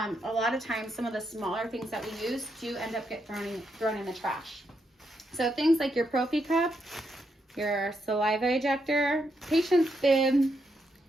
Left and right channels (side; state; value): both; normal; correlation 0.80